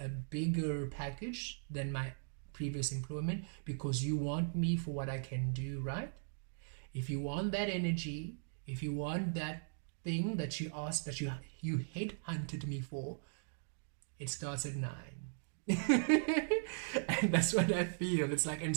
bigger package than my previous employment because you want me for what I can do, right? If you want that energy, if you want that thing that you asked, that you headhunted me for, it starts at 9. And that's what I feel. It's like, and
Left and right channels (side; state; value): left; silent; digital silence